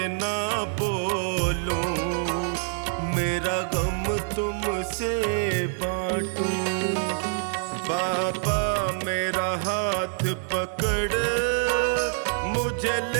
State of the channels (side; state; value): left; silent; digital silence